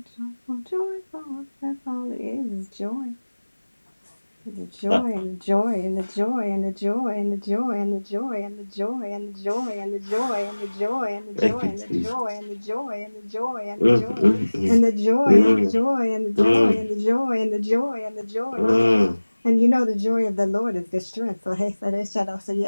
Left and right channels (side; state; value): both; inverted; correlation -1.00